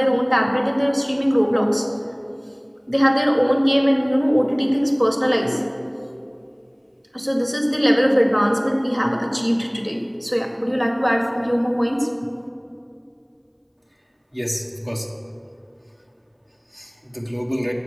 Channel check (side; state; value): both; identical; correlation 1.00